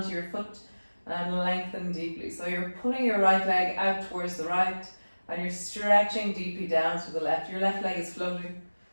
your foot and lengthen deeply. So you're pulling your right leg out towards the right and you're stretching deeply down to the left. Your left leg is floating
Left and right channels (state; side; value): inverted; both; correlation -1.00